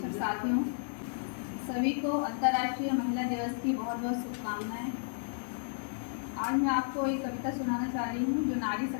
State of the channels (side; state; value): right; silent; 56 dB below the other